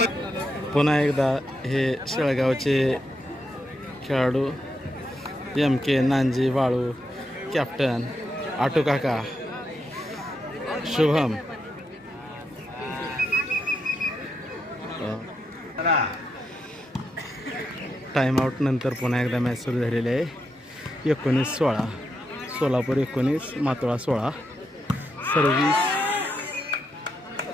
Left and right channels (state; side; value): normal; both; correlation 0.83